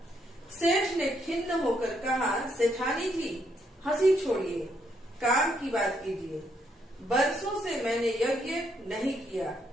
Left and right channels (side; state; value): both; normal; correlation 0.74